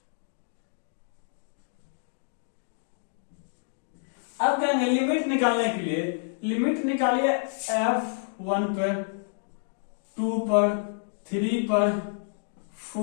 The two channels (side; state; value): right; silent; digital silence